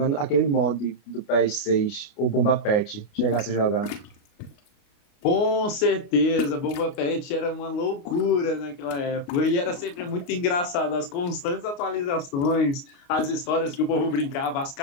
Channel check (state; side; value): late; right; 29 ms